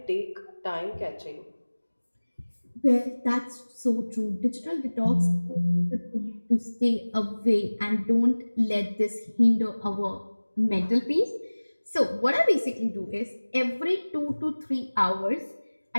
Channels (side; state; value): both; inverted; correlation -1.00